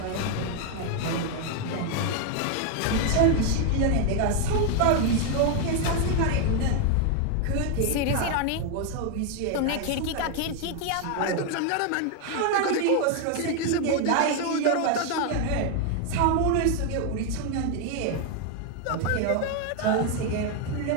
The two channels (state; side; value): different; both; correlation 0.01